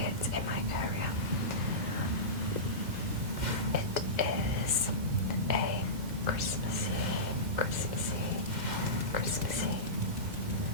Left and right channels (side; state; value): left; late; 2.1 ms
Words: in my area. It is a Christmassy